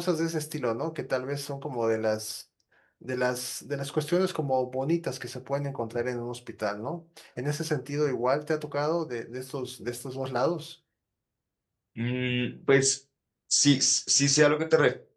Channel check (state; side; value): identical; both; correlation 1.00